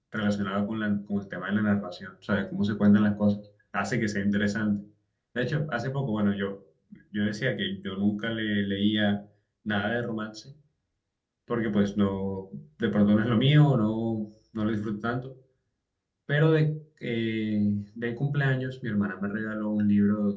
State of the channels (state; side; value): identical; both; correlation 1.00